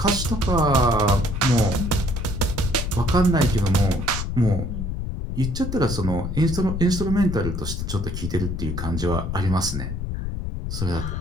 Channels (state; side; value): noise; left; rumble, 4 dB below the sound